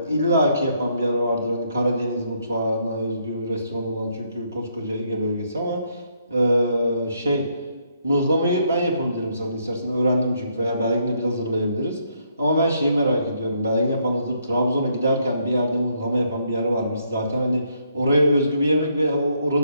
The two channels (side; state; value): both; inverted; correlation -0.73